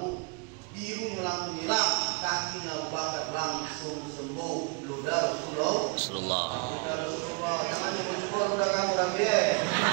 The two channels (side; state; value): left; quieter; 31.9 dB